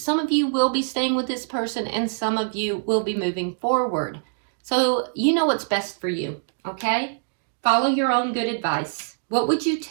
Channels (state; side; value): silent; left; digital silence